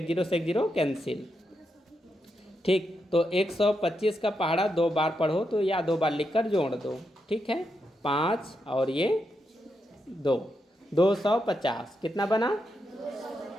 0 से 1 0 कैंसिल। ठीक, तो 125 का पहाड़ा 2 बार पढ़ो तो या 2 बार लिखकर जोड़ दो। ठीक है, 5 और ये 2, 250 कितना बना?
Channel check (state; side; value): normal; both; correlation 0.84